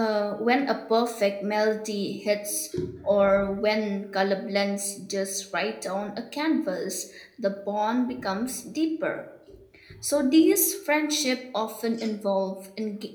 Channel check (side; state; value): both; identical; correlation 1.00